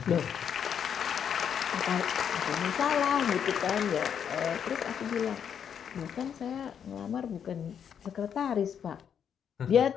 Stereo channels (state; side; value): quieter; right; 8.1 dB